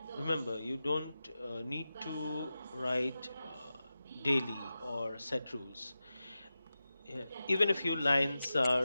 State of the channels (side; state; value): both; inverted; correlation -0.93